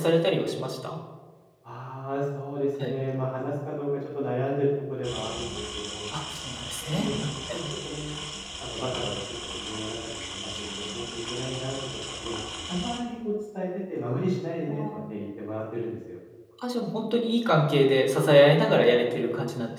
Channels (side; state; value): both; identical; correlation 1.00